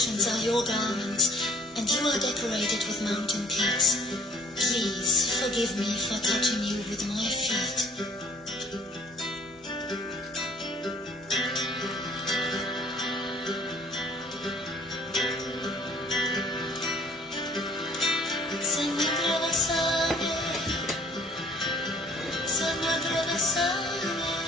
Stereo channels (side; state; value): both; normal; correlation 0.56